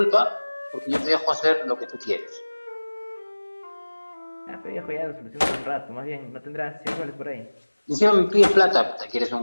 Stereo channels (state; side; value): inverted; both; correlation -1.00